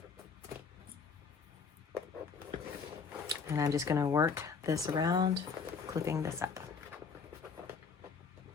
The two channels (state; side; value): quieter; right; 5.4 dB